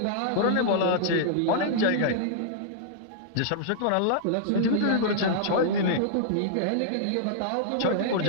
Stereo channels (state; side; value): different; both; correlation -0.01